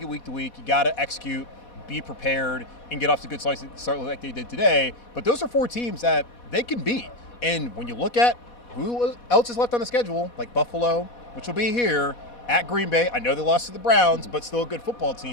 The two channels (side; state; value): right; late; 4.1 ms